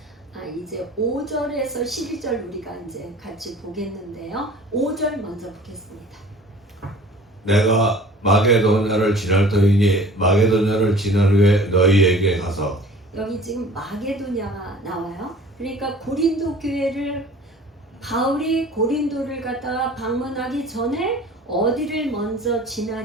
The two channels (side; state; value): both; normal; correlation 0.46